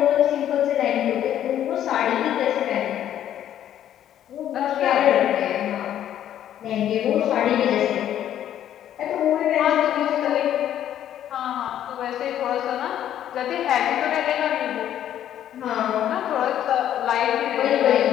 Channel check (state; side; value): quieter; right; 11.0 dB